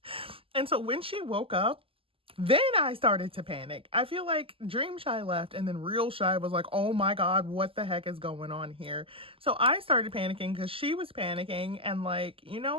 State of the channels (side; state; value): left; late; 0.26 ms